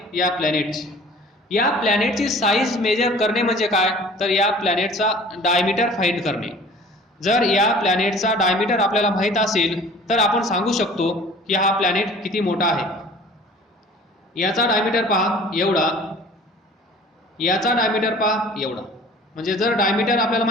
या प्लॅनेटची. या प्लॅनेटची साईज मेजर करणे म्हणजे काय, तर या प्लॅनेटचा डायमीटर फाइंड करणे. जर या प्लॅनेटचा डायमीटर आपल्याला माहित असेल तर आपण सांगू शकतो की हा प्लॅनेट किती मोठा आहे. याचा डायमीटर पहा एवढा, याचा डायमीटर पहा एवढा. म्हणजे जर डायमीटर आपल्याला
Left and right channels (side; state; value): both; normal; correlation 0.46